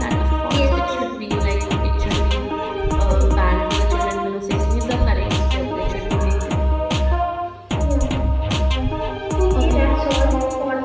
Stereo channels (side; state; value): both; identical; correlation 1.00